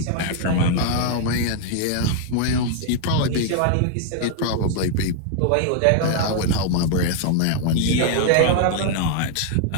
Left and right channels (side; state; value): both; different; correlation 0.00